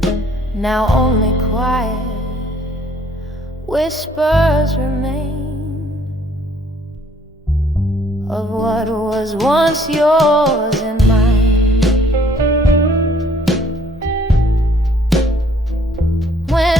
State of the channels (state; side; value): normal; both; correlation 0.61